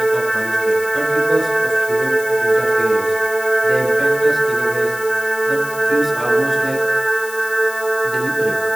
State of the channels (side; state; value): left; noise; hiss, 14 dB below the sound